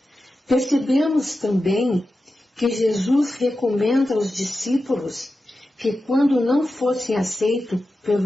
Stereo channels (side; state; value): both; normal; correlation 0.92